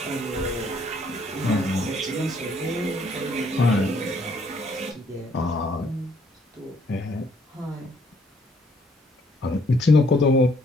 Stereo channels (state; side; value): normal; both; correlation 0.66